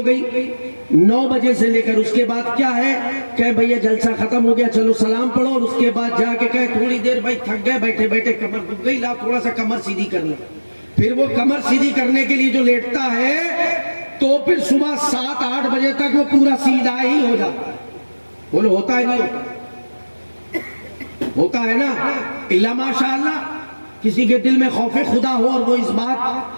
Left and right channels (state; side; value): inverted; both; correlation -1.00